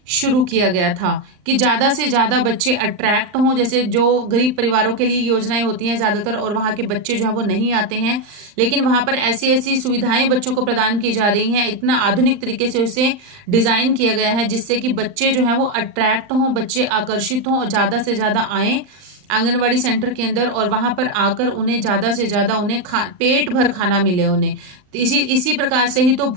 शुरू किया गया था कि ज्यादा से ज्यादा बच्चे अट्रैक्ट हों। जैसे जो गरीब परिवारों के लिए योजनाएं होती हैं ज्यादातर, और वहां के बच्चे जो है वो नहीं आते हैं, लेकिन वहां पर ऐसी ऐसी सुविधाएं बच्चों को प्रदान की जा रही हैं। इतना आधुनिक तरीके से उसे डिजाइन किया गया है जिससे कि बच्चे जो है वो अट्रैक्ट हों, बच्चे आकर्षित हों और ज्यादा से ज्यादा आए आंगनवाड़ी सेंटर के अंदर, और वहां पर आकर उन्हें ज्यादा से ज्यादा उन्हें पेट भर खाना मिले उन्हें। तो इसी प्रकार से ही तो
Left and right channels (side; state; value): left; late; 39 ms